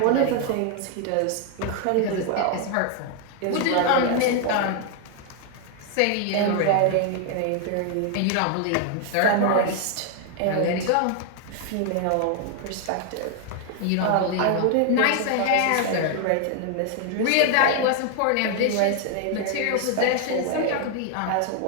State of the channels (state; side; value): different; both; correlation 0.00